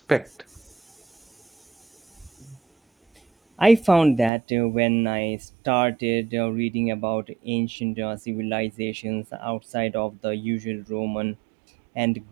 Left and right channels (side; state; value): left; drops out; at 4.3 s